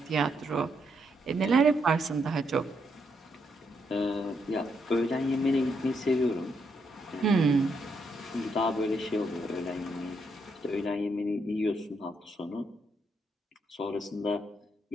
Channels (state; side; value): normal; both; correlation 0.77